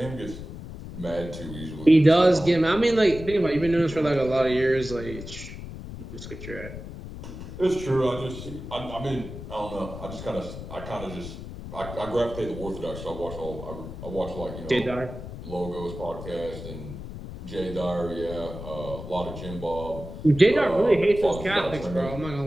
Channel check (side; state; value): left; noise; rumble, 11 dB below the sound